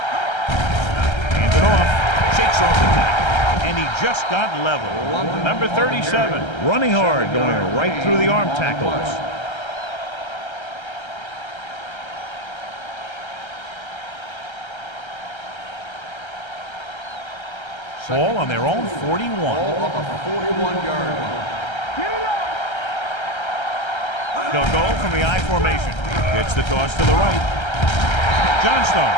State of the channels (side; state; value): right; late; 1.3 ms